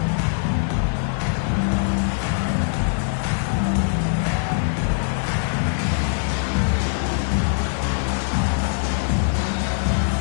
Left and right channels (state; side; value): silent; right; 64 dB below the other